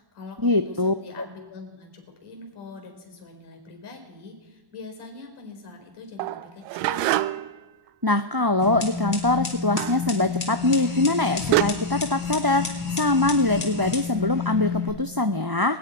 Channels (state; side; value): late; left; 1.0 ms